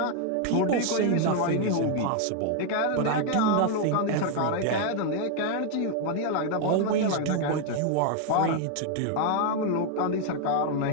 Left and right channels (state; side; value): different; both; correlation 0.00